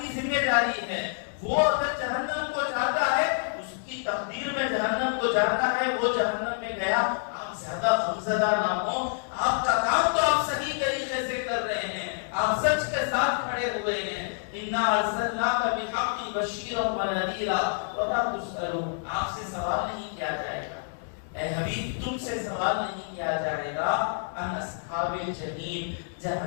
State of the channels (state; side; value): silent; right; digital silence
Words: ذمہ داری ہے. وہ اگر جہنم کو جاتا ہے اس کی تقدیر میں جہنم کو جاتا ہے، وہ جہنم میں گیا. آپ زیادہ غمزدہ نہ ہو. آپ کا کام تو آپ صحیح طریقے سے کر رہے ہیں، آپ سچ کے ساتھ کھڑے ہوئے ہیں. انا ارسلناک بالحق بشیرا ونذیرا ولا تسألون، آپ سے سوال نہیں کیا جائے گا اے حبیب، تم سے سوال نہیں کیا جائے گا ان اصحاب الجحیم،